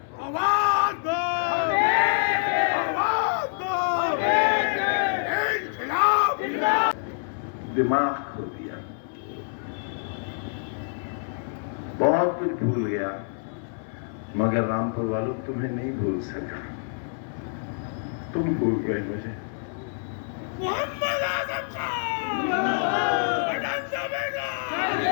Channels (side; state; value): right; silent; 58 dB below the other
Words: आवाज दो, आवाज दो, इनकलाब। दिमाग खो दिया, बहुत कुछ भूल गया, मगर रामपुर वालों तुम्हें नहीं भूल सका। तुम भूल गए मुझे। मोहम्मद आजम खान